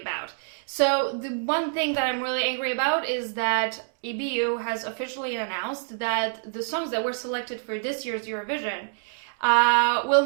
about. So the one thing that I'm really angry about is that EBU has officially announced that the songs that were selected for this year's Eurovision will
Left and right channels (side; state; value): left; silent; digital silence